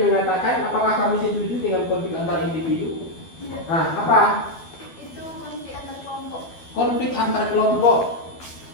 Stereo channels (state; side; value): late; right; 12 ms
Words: mengatakan, apakah kamu setuju dengan konflik antar individu? Nah, apa? Itu konflik antar kelompok. Konflik antar kelompok.